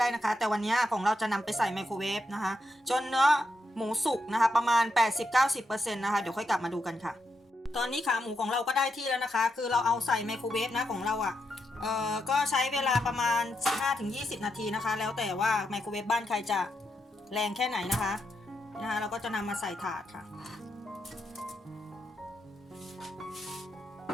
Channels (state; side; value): normal; both; correlation 0.83